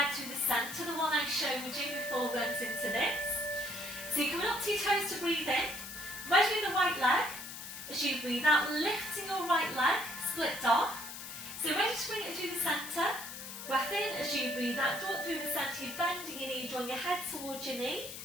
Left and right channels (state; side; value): noise; left; hiss, 10 dB below the sound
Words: to the centre, the one I showed you before we went into this. So you're coming up to your toes to breathe in, ready with the right leg, as you breathe out, lifting your right leg, split dog. So ready to bring it through the centre, breath in as you breathe out, draw it through the centre, you're bending your knee, drawing your head towards your knee.